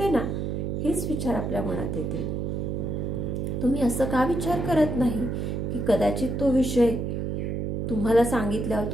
ना, हेच विचार आपल्या मनात येतील. तुम्ही असं का विचार करत नाही की कदाचित तो विषय तुम्हाला सांगितल्यावर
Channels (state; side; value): noise; right; hum, 2 dB below the sound